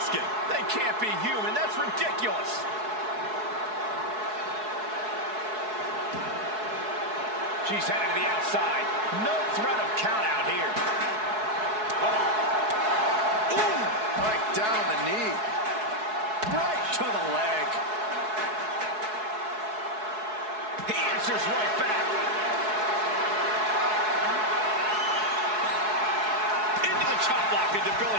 They can't be human. That's ridiculous. She's headed to the outside. No threat of count out here. Ooh, right down the knee. Right to the leg. He answers right back. Into the chop block, a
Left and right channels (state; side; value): late; left; 4.7 ms